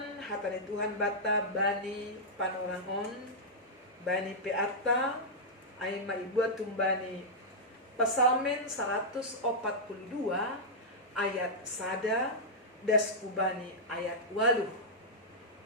hatan Tuhan bata bani panorangon, bani peata, ay maibuat tumbani Pasalmen 142 ayat sada das kubani ayat 8.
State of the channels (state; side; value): normal; both; correlation -0.09